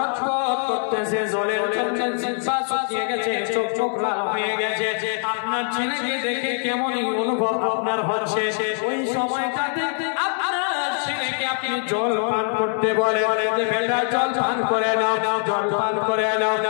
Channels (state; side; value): silent; right; 56 dB below the other